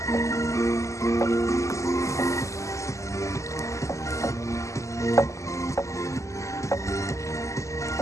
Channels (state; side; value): late; right; 0.15 ms